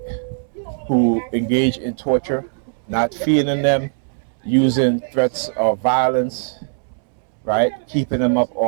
Who engaged in torture, not feeding them, using threats of violence, right? Keeping them up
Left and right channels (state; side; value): silent; left; 66 dB below the other